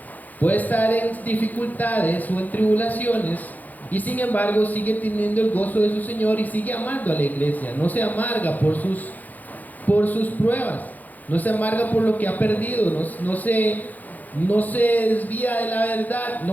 puede estar en dificultades o en tribulaciones, y sin embargo sigue teniendo el gozo de su Señor y sigue amando a la iglesia. No se amarga por sus pruebas, no se amarga por lo que ha perdido, no se desvía de la verdad,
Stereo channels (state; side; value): late; right; 0.082 ms